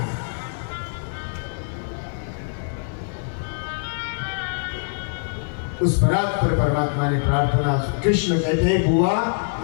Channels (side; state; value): right; silent; 63 dB below the other